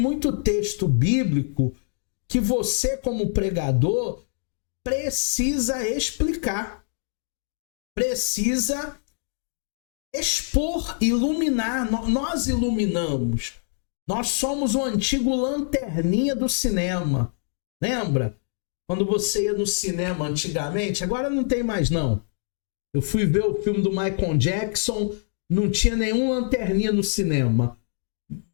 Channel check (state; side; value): silent; right; 62 dB below the other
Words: texto bíblico que você, como pregador, precisa explicar, precisa expor, iluminar. Nós iluminamos. Nós somos o antigo lanterninha do cinema. Lembra? Quando você ia no cinema antigamente, agora não tem mais não. Eu fui ver o filme do Michael Jackson, não tinha nenhum lanterninha no cinema.